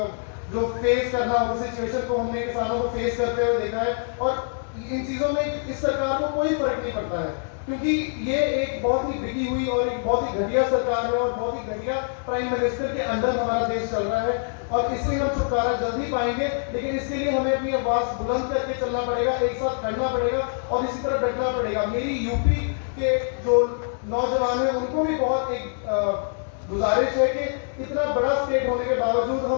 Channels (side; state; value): right; silent; 62 dB below the other